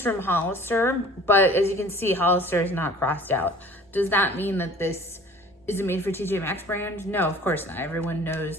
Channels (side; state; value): both; normal; correlation 0.48